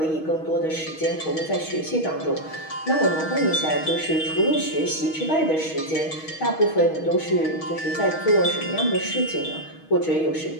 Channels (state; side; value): late; right; 6.3 ms